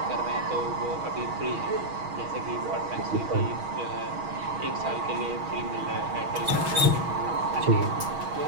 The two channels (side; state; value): left; late; 6.3 ms